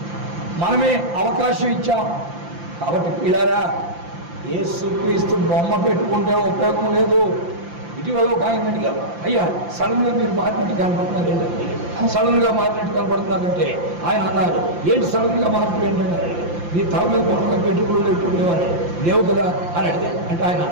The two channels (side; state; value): left; late; 5.8 ms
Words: మనమే అవకాశం ఇచ్చాం. కాబట్టి పిల్లారా, యేసుక్రీస్తు బొమ్మ పెట్టుకుంటే ఉపయోగం లేదు. ఇటీవల ఒక ఆయన అడిగారు, అయ్యా సడన్గా మీరు మారినట్టు కనపడుతున్నారు ఏంటంటే, సడన్గా మారినట్టు కనపడుతున్నారంటే ఆయన అన్నారు, ఏంటి సడన్గా మార్పు ఏంటంటే, మీ తల మీద కొత్తగా పెట్టుకులు లేకుండేవారు లేవు కదా అని అడిగారు. అంటే ఆయన